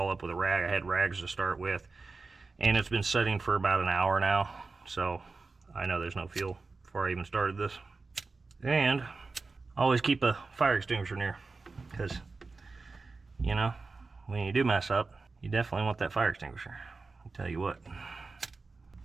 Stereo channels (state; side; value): quieter; left; 4.0 dB